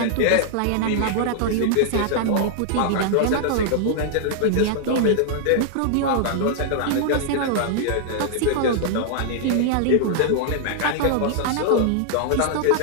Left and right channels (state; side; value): different; both; correlation -0.01